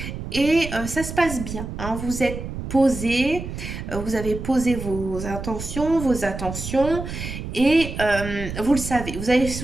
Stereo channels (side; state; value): right; noise; rumble, 7 dB below the sound